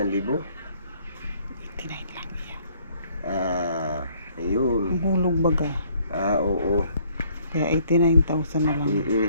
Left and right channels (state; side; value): inverted; both; correlation -0.63